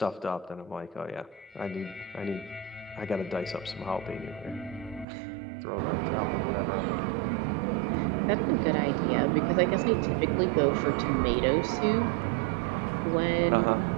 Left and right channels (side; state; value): left; drops out; at 5.1 s